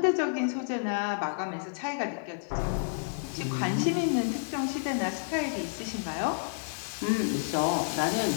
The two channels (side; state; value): right; silent; digital silence